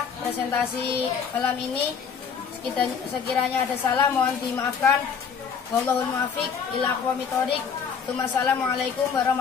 presentasi malam ini. Sekiranya ada salah mohon dimaafkan. Wallahul muwaffiq ila aqwamit thoriq. Wassalamualaikum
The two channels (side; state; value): right; quieter; 6.5 dB